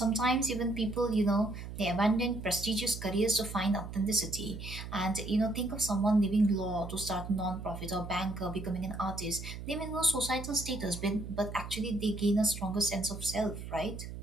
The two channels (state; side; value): noise; right; hum, 9 dB below the sound